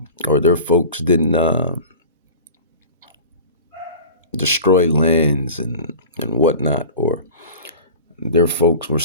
or their folks didn't destroy lands and whatnot, or their folks were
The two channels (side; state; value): both; inverted; correlation -0.38